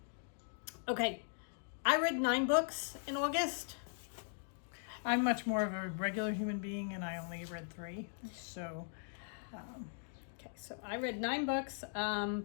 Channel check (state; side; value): silent; right; digital silence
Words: Okay. I read 9 books in August. I'm much more of a regular human being and I only read 3. So, Okay, so I read 9 books,